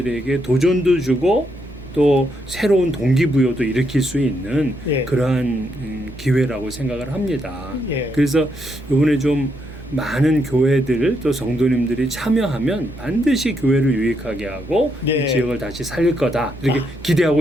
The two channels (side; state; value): left; noise; rumble, 23 dB below the sound